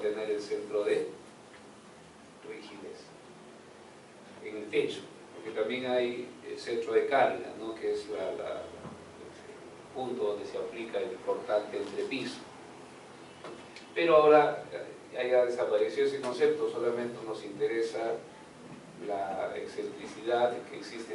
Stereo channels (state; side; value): identical; both; correlation 1.00